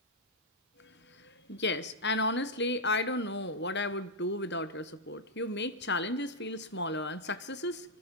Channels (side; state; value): both; normal; correlation -0.04